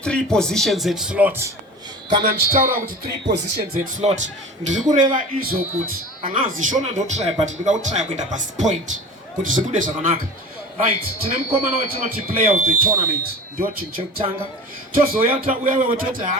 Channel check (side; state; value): both; normal; correlation 0.36